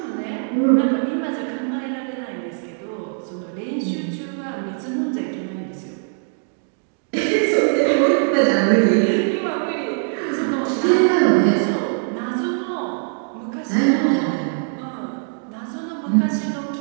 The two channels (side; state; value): left; silent; 61 dB below the other